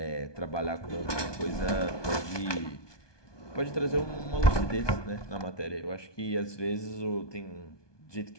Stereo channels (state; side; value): late; right; 1.2 ms